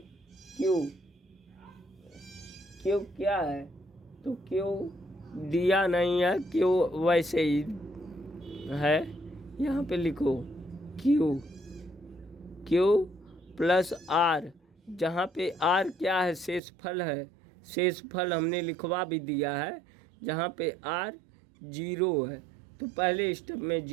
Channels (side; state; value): left; drops out; at 16.6 s